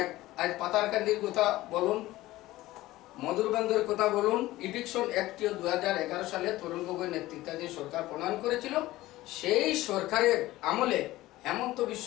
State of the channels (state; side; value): quieter; right; 17.1 dB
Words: আজ পাতারকান্দির কথা বলুন, মধুরবন্দর কথা বলুন, ইভিকশন অ্যাক্টটিও 2011 সালে তরুণ গগৈ নেতৃত্বাধীন সরকার প্রণয়ন করেছিল। সেই সরকারের আমলে হেমন্ত বিশ্ব